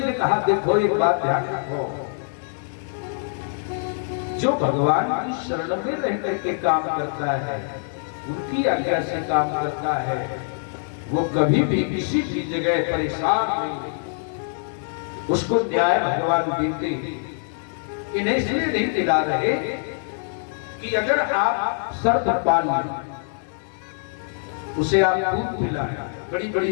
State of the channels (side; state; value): right; silent; 60 dB below the other